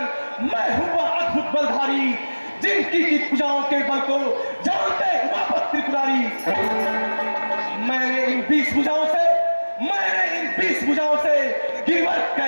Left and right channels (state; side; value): inverted; both; correlation -1.00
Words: मैं हूँ वह अद्भुत बलधारी जिनकी की पूजाओं के बल को जानते उमापत त्रिपुरारी। मैंने इन 20 भुजाओं से गिरवर